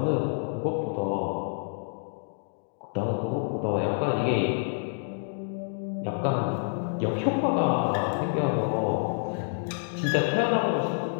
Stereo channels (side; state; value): right; silent; 59 dB below the other